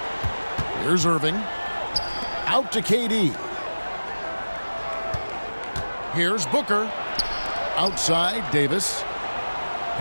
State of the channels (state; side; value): inverted; both; correlation -1.00